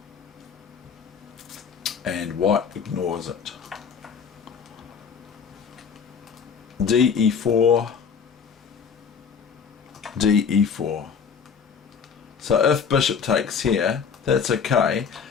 and white ignores it. de4, de4. So if bishop takes here, that's okay,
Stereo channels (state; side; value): quieter; right; 6.5 dB